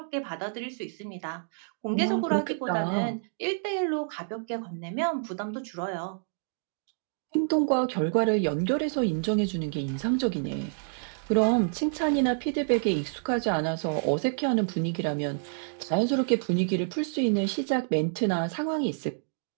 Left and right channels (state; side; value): silent; left; digital silence